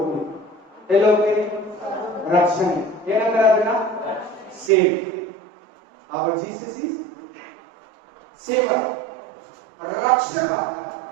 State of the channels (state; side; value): drops out; left; at 4.7 s